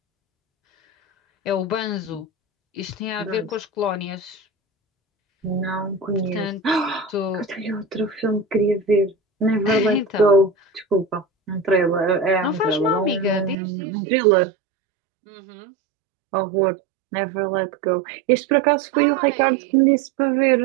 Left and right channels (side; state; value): left; drops out; at 13.6 s